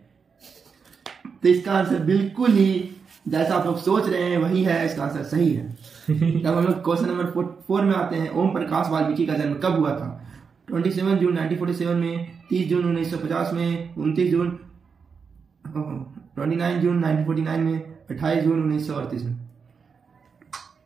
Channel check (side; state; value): left; quieter; 5.7 dB